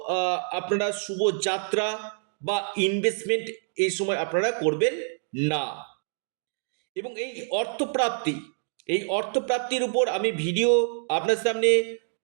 আপনারা শুভ যাত্রা বা ইনভেস্টমেন্ট এই সময় আপনারা করবেন না। এবং এই অর্থপ্রাপ্তির উপর আমি ভিডিও আপনার সামনে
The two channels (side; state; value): left; silent; digital silence